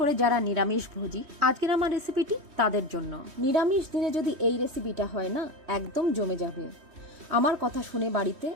যারা নিরামিষ ভোজী, আজকের আমার রেসিপিটি তাদের জন্য। নিরামিষ দিনে যদি এই রেসিপিটা হয় না, একদম জমে যাবে। আমার কথা শুনে বাড়িতে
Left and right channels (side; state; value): left; late; 3.1 ms